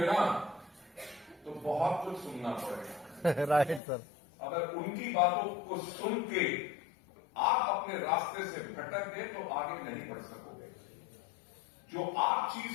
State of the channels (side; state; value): right; drops out; at 3.8 s